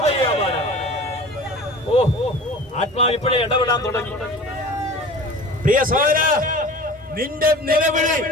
ആത്മാവ് ഇപ്പോഴേ ഇടപെടാൻ തുടങ്ങി. പ്രിയ സഹോദര, നിന്റെ നിലവിളി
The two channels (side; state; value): both; normal; correlation 0.40